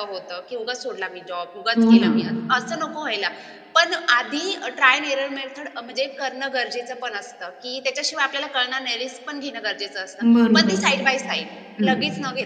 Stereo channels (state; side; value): identical; both; correlation 1.00